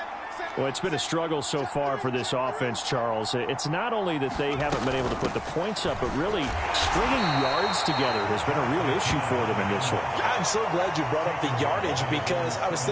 Well, it's been a struggle so far for this offense, Charles. It's not only that they haven't been able to put the points up, but really stringing yards together has been a real issue for them in this one. I'm so glad you brought up the yardage because I was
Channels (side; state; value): both; identical; correlation 1.00